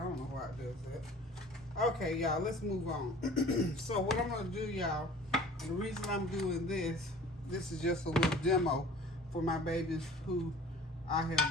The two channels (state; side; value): normal; both; correlation 0.46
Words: don't know why it does that. Okay, y'all, let's move on. So what I'm gonna do, y'all, the reason I'm doing this is just a little demo for my babies who I